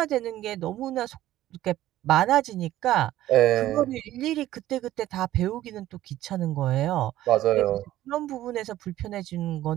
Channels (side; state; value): left; quieter; 14.2 dB